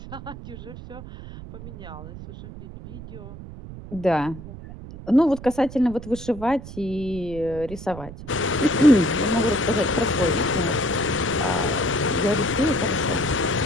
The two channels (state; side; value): noise; right; rumble, 13 dB below the sound